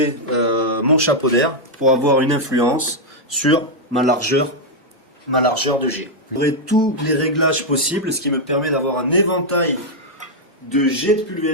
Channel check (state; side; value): normal; both; correlation -0.02